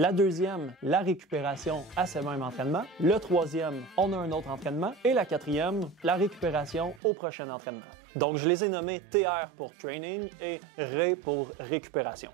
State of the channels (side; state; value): left; drops out; at 7.0 s